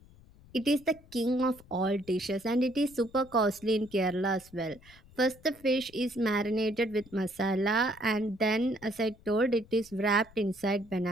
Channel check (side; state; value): left; noise; rumble, 24 dB below the sound